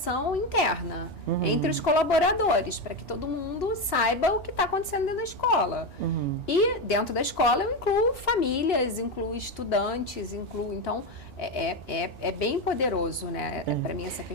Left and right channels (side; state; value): both; normal; correlation 0.13